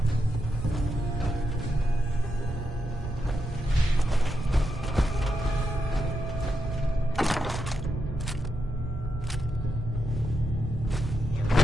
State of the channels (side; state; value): both; normal; correlation 0.84